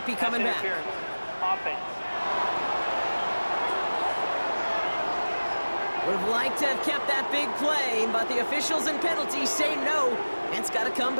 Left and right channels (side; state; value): both; inverted; correlation -1.00